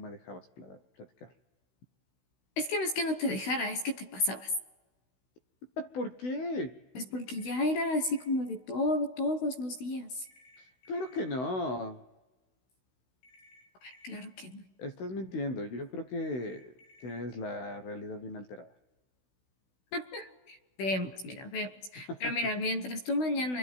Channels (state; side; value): late; right; 16 ms